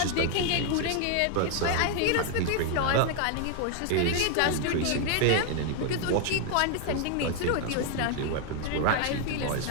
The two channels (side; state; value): both; different; correlation 0.00